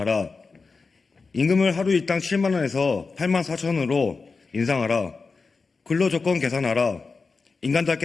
임금을 하루 일당 7만 원에서 8만 4천 원으로 인상하라. 근로조건 개선하라.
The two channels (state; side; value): quieter; right; 4.4 dB